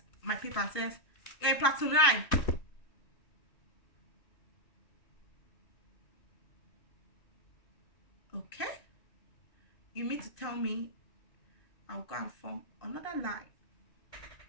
my paper and says, "You're in platoon 9. Okay. You mean to tell me I'll go and form another line?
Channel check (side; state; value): right; late; 2.6 ms